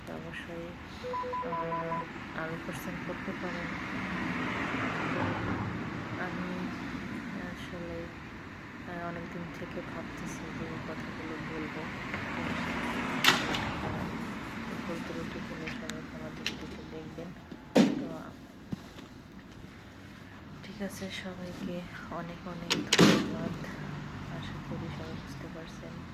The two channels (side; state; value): both; identical; correlation 1.00